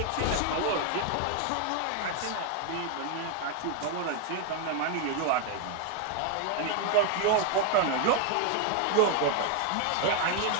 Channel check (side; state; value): both; different; correlation 0.01